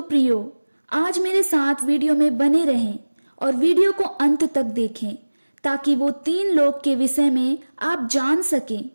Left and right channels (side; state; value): both; inverted; correlation -1.00